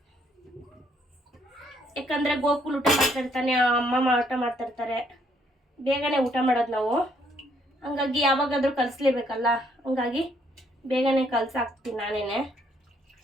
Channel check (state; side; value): normal; both; correlation 0.69